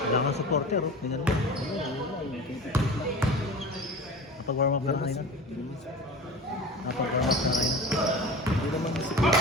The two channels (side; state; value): both; normal; correlation 0.35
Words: Kailangan supporter, oh. Tingnan mo. Napag-warm up ka na kanina? Napag-warm up ka na kanina? Hindi naman